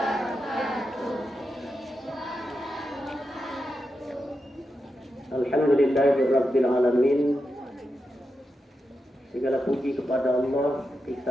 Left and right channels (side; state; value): both; normal; correlation 0.88